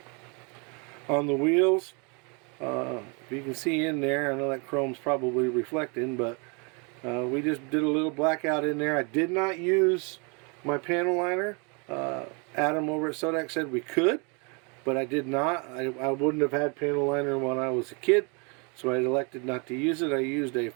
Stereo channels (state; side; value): quieter; left; 33.3 dB